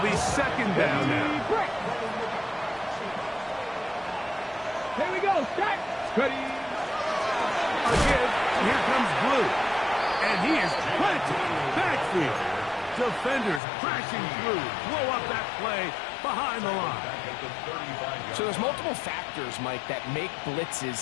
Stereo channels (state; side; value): drops out; right; at 13.6 s